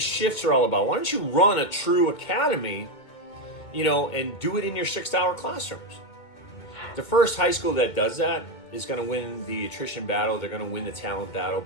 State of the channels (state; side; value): late; right; 2.2 ms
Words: are all about? Why don't you run a true academy, you know, and do it in your 6 hour classrooms? The first high school that does that is going to win the attrition battle. They're going to win the talent battle,